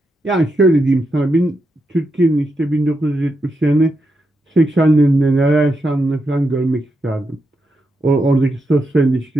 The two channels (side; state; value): both; normal; correlation 0.84